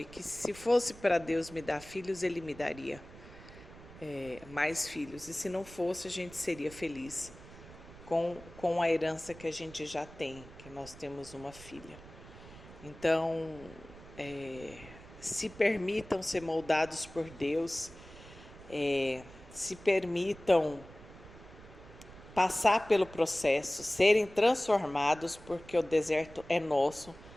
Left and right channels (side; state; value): right; noise; rumble, 18 dB below the sound